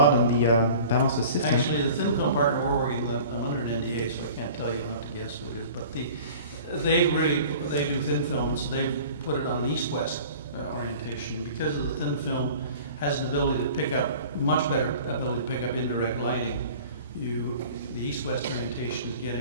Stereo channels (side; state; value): both; inverted; correlation -0.44